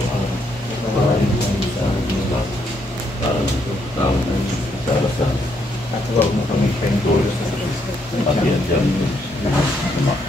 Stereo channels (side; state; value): both; normal; correlation 0.74